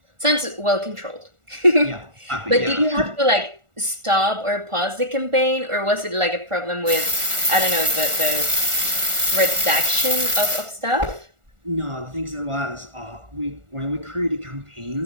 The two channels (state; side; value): late; left; 1.4 ms